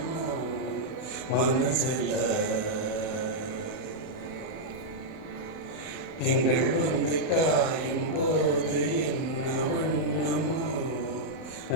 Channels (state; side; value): late; right; 31 ms